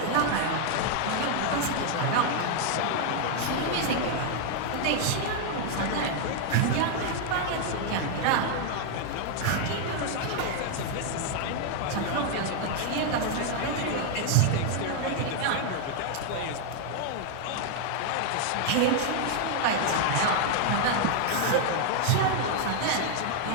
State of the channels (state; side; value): different; both; correlation 0.00